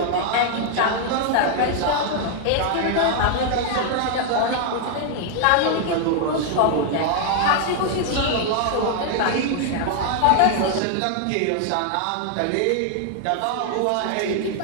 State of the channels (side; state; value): both; different; correlation 0.00